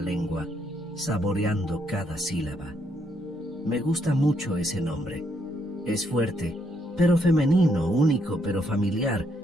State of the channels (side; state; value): both; normal; correlation 0.74